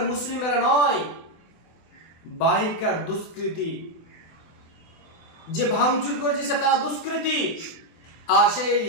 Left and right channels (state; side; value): late; right; 24 ms